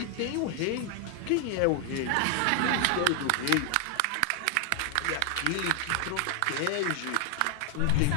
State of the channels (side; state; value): both; different; correlation 0.00